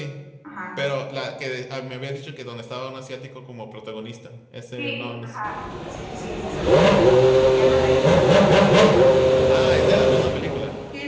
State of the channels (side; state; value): both; identical; correlation 1.00